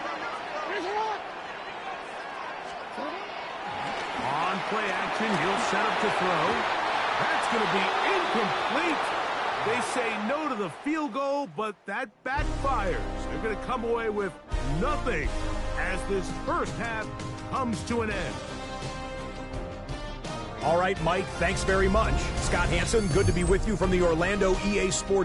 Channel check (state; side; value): identical; both; correlation 1.00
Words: On play action, he'll set up to throw. That's going to be incomplete. They say no to the field goal, but that backfires. They're going to come away with nothing as this first half comes to an end. All right, Mike, thanks very much. Scott Hanson, good to be with you from the Orlando EA